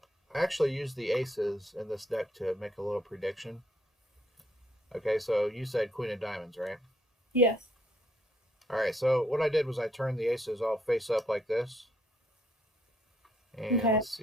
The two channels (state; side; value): normal; both; correlation 0.71